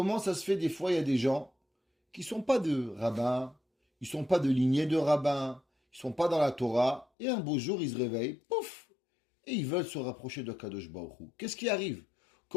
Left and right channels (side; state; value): right; drops out; at 7.1 s